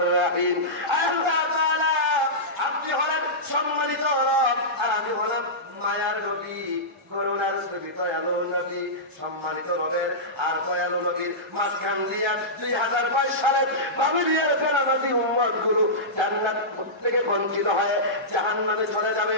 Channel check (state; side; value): normal; both; correlation -0.15